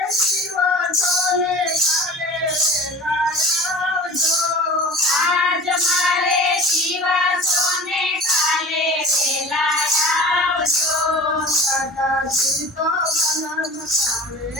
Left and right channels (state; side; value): normal; both; correlation 0.39